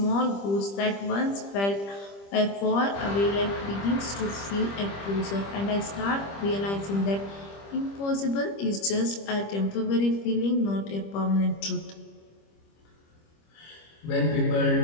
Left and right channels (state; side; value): late; right; 25 ms